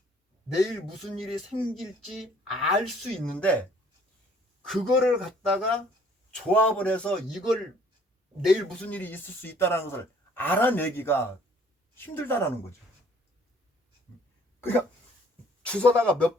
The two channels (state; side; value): normal; both; correlation 0.58